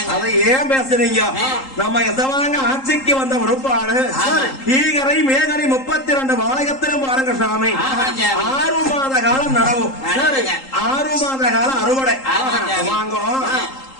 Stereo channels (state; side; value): late; right; 3.8 ms